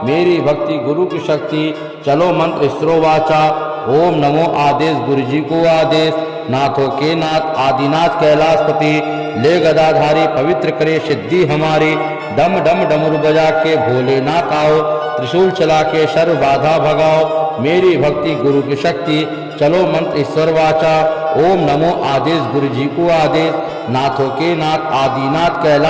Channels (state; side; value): identical; both; correlation 1.00